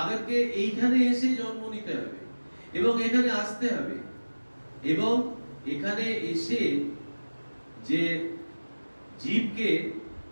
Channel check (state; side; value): inverted; both; correlation -1.00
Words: এইখানে এসে জন্ম নিতে হবে এবং এখানে আসতে হবে এবং এখানে এসে যে জীবকে